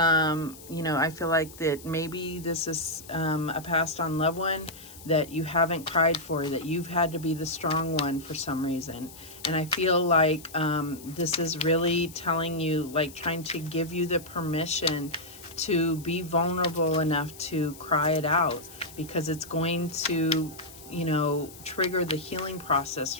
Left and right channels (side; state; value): left; noise; hiss, 18 dB below the sound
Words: feel like that maybe this is a passed on loved one that you haven't cried for, that you've had to be the strong one for some reason. And I feel like this is really telling you, like trying to give you the permission to be vulnerable enough to cry it out, because it's going to, trigger the healing process